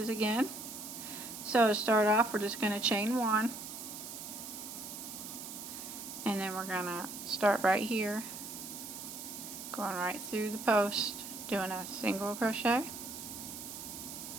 again. So to start off, we're just going to chain 1, and then we're going to start right here, going right through the post, doing a single crochet,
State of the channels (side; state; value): right; noise; hiss, 9 dB below the sound